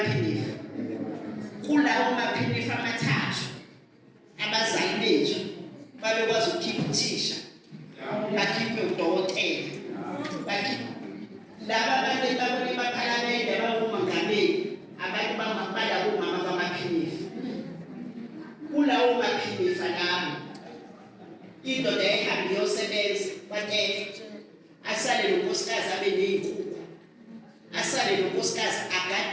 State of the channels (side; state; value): both; identical; correlation 1.00